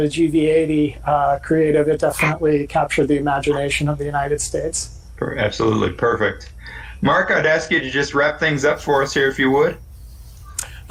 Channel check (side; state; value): both; identical; correlation 1.00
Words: creative, it definitely captured the imagination of the United States. Absolutely perfect. Mark, I'd ask you to just wrap things up for us here, if you would.